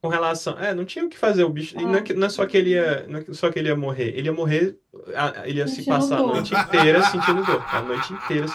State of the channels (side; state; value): both; identical; correlation 1.00